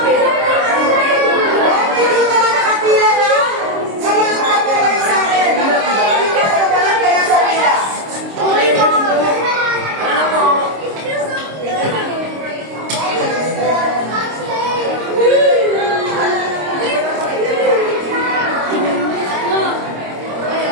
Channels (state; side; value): late; left; 26 ms